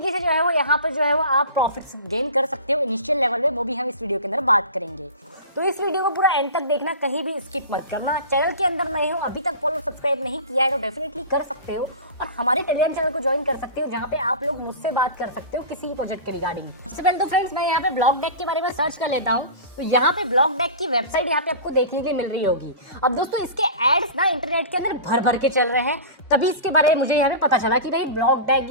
से जो है वो यहाँ पर जो है वो आप प्रॉफिट्स गेन कर सकते हो इनिशियल लेवल में, वो भी हम इस वीडियो के अंदर बात करेंगे। तो इस वीडियो को पूरा एंड तक देखना, कहीं भी स्किप मत करना। चैनल के अंदर नहीं हो, अभी तक फॉलो सब्सक्राइब नहीं किया है तो डेफिनेटली कर सकते हो और हमारे टेलीग्राम चैनल को ज्वाइन कर सकते हो, जहाँ पे आप लोग मुझसे बात कर सकते हो किसी भी प्रोजेक्ट के रिगार्डिंग। सबसे पहले तो फ्रेंड्स मैं यहाँ पे ब्लॉक डेक के बारे में सर्च कर लेता हूँ, तो यहाँ पे ब्लॉक डेक की वेबसाइट यहाँ पे आपको देखने के लिए मिल रही होगी। अब दोस्तों इसके एड्स ना इंटरनेट के अंदर भर भर के चल रहे हैं, तभी इसके बारे में मुझे यहाँ पे पता चला कि भाई ब्लॉक डेक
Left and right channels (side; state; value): both; inverted; correlation -0.33